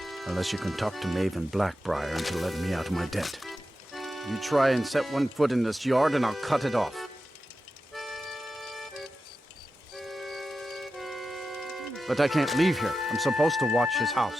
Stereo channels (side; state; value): both; normal; correlation 0.91